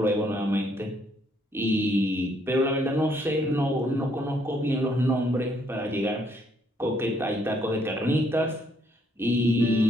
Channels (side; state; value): both; normal; correlation 0.69